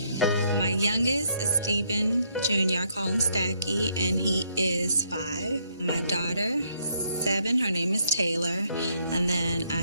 My youngest is Stephen Jr., I call him Stacky, and he is 5. My daughter is 7, her name is Taylor, and then I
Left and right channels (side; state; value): both; inverted; correlation -0.72